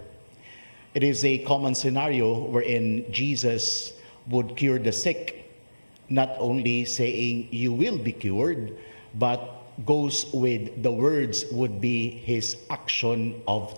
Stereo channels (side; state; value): both; inverted; correlation -1.00